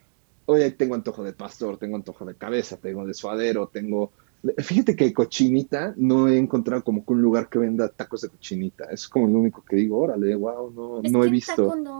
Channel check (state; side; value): silent; left; digital silence